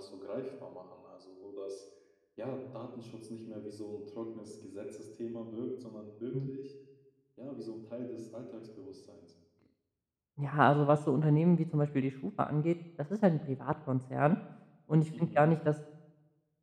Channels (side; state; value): both; identical; correlation 1.00